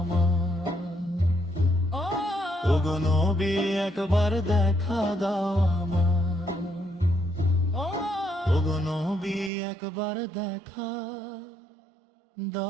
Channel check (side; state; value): left; drops out; at 9.5 s